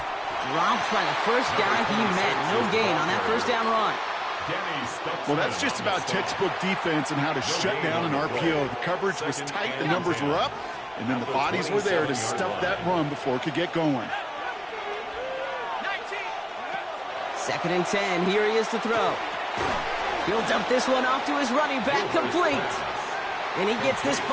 Dropped by the first guy he met. No gain on that 1st down run. Well, that's just about textbook defense and how to shut down an RPO. The coverage was tight, the numbers were up, and then the bodies were there to stuff that run before it could get going. 2nd and 10. Here he is to throw. He'll dump this one off to his running back, complete. And he gets this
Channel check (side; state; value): both; identical; correlation 1.00